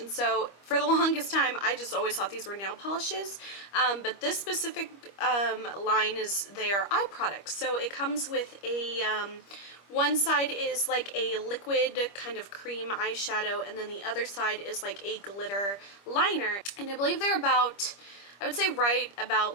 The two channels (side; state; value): right; late; 25 ms